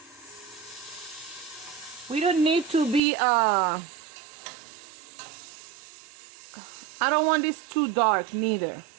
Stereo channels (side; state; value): left; drops out; at 3.0 s